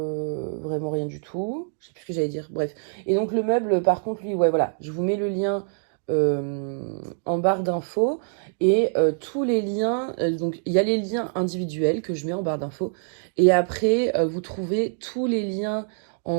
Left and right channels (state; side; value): silent; left; digital silence